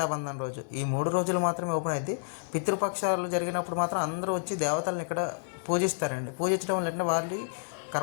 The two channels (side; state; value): right; silent; digital silence